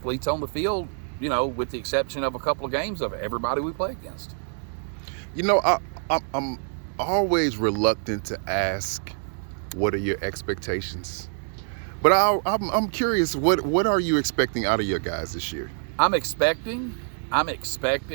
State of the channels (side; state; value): left; silent; digital silence